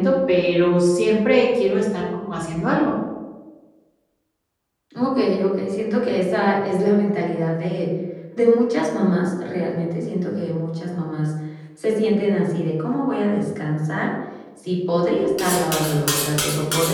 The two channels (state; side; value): identical; both; correlation 1.00